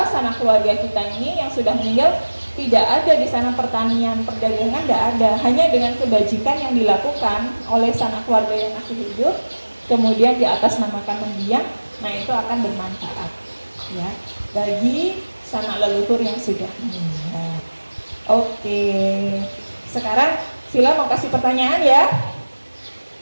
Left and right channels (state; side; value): inverted; both; correlation -1.00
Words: sanak keluarga kita ini yang sudah meninggal tidak ada di sana pertanian, perdagangan tidak ada, hanya dengan kebajikan yang dilakukan oleh sanak keluarga yang masih hidup, kemudian di atas namakan mendiang, nah itu akan bermanfaat ya bagi sanak leluhur yang sudah meninggal. Oke, sekarang Sila mau kasih pertanyaan ya,